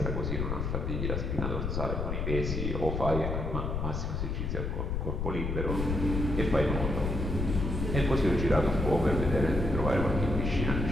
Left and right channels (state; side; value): noise; left; rumble, 1 dB below the sound